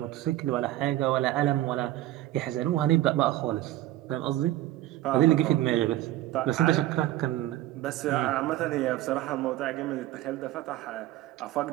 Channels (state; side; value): quieter; left; 14.9 dB